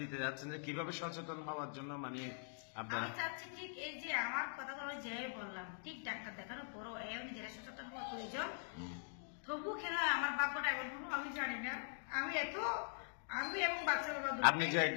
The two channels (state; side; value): silent; right; digital silence